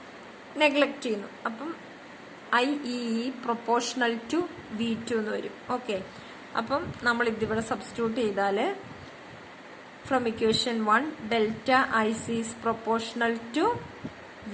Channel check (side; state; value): both; identical; correlation 1.00